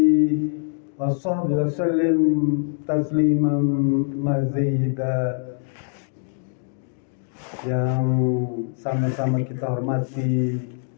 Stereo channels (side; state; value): right; silent; 57 dB below the other